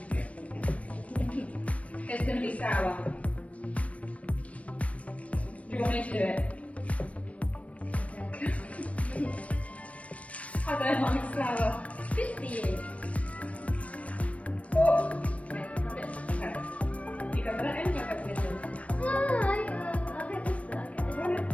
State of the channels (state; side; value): late; right; 0.065 ms